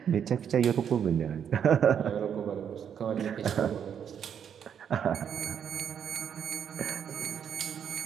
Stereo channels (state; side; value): quieter; left; 8.3 dB